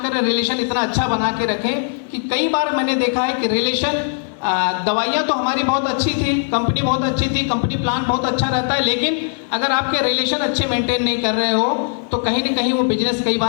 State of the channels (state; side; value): silent; right; 66 dB below the other